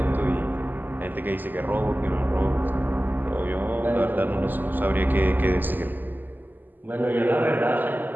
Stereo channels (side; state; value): left; late; 0.088 ms